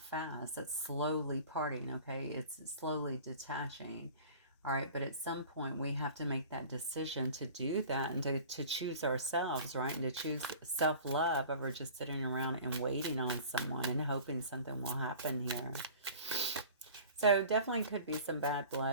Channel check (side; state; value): both; inverted; correlation -0.43